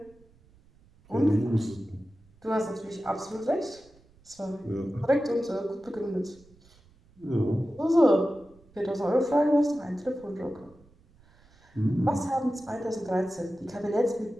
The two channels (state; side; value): noise; right; rumble, 29 dB below the sound